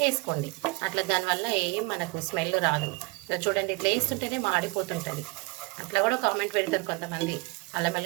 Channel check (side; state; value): left; quieter; 26.1 dB